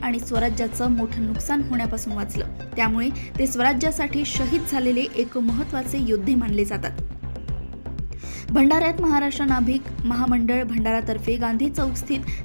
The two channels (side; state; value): both; inverted; correlation -1.00